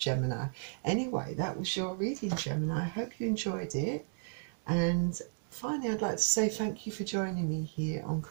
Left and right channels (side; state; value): left; silent; digital silence